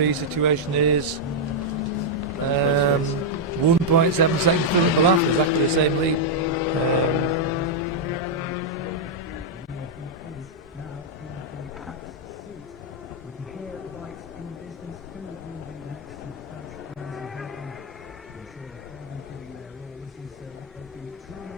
situation is 1.7 seconds still at Balaf, exactly the same lead.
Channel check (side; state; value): both; normal; correlation -0.04